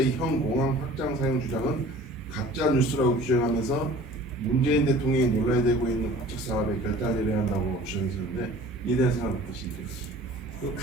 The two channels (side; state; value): both; normal; correlation 0.46